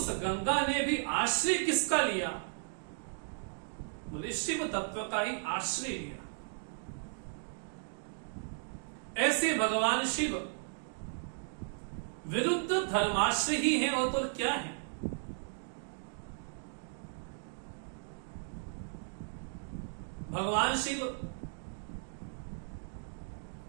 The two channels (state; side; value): silent; left; digital silence